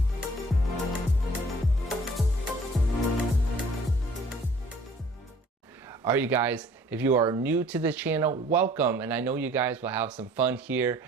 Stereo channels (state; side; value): normal; both; correlation 0.54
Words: Alright you guys, if you are new to the channel, welcome, and I know you guys will have some fun here